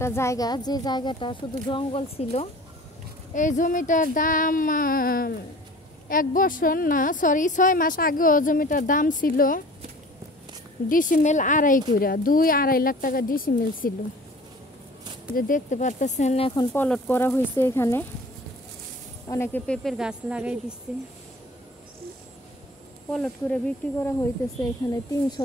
জায়গা, যে জায়গাটা শুধু জঙ্গল ছিল। এই জমিটার দাম 1 বছর না, সরি 6 মাস আগেও জমিটার দাম ছিল ডিসিমেল 2.5 কইরা, 2-2.5 লাখ টাকা ডিসিমেল ছিল। যে দেখতে পারতেছেন এখন পলট করা হয়েছে, এখানে অনেকে পেঁপের গাছ লাগাই দিচ্ছে, পলট করে বিক্রি করা হইতেছে। এখানে 3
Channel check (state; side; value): normal; both; correlation 0.45